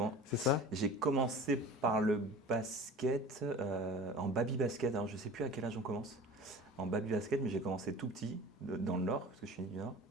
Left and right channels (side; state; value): both; normal; correlation 0.39